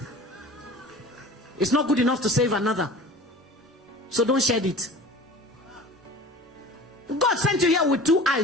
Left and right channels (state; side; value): normal; both; correlation 0.40